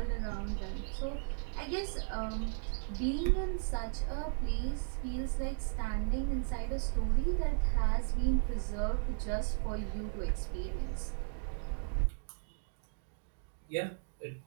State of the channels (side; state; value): left; silent; digital silence